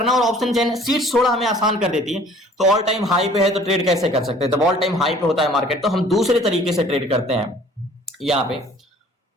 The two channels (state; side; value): normal; both; correlation 0.53